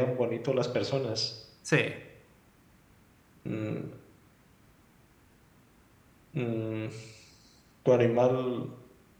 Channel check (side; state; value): both; identical; correlation 1.00